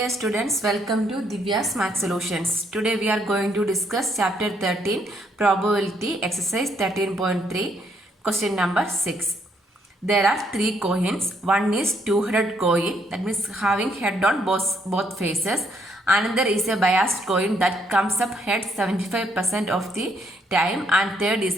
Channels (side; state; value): both; normal; correlation 0.71